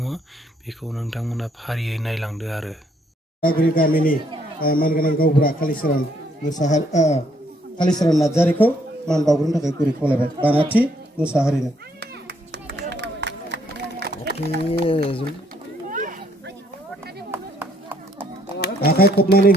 बेखौ नोंथांमोना फारियै नायलांदो आरो। सारागुरि गामिनि मानगोनां गावबुरा कालिचरन नार्जारिखौ मान बावग्रोनो थाखाय गुरै खावलायबाय। बानाथि मुसाहारिनो आखाइ खबनानै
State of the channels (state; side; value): normal; both; correlation 0.69